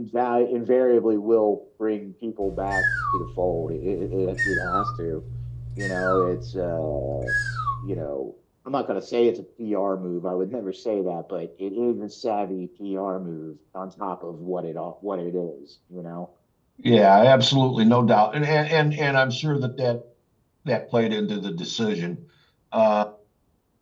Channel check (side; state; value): both; identical; correlation 1.00